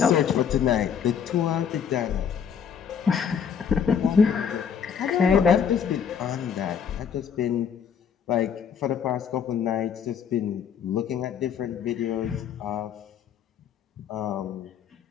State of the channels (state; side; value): quieter; right; 7.5 dB